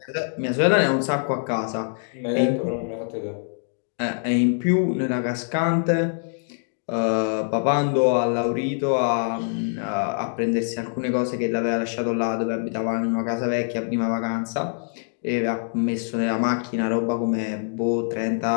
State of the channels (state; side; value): silent; right; digital silence